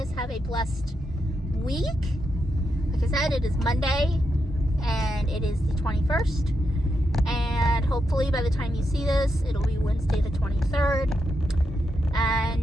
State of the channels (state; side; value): normal; both; correlation 0.84